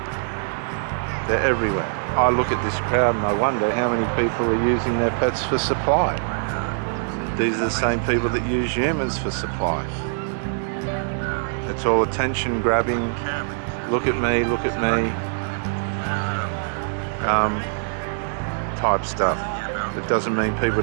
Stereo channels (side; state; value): left; silent; digital silence